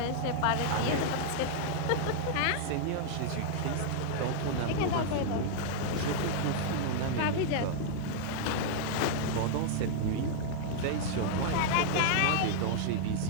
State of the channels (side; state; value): both; different; correlation -0.01